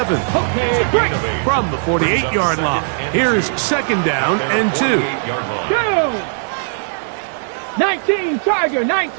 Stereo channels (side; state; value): left; silent; digital silence